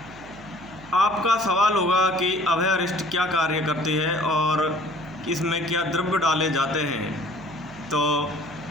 आपका सवाल होगा कि अभयारिष्ट क्या कार्य करती है और इसमें क्या द्रव्य डाले जाते हैं। तो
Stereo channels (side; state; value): right; noise; hum, 20 dB below the sound